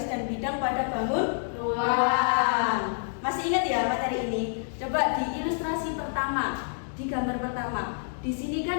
dan bidang pada bangun ruang. Masih ingat ya materi ini? Coba di ilustrasi pertama, di gambar pertama. Di sini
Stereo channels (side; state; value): right; silent; digital silence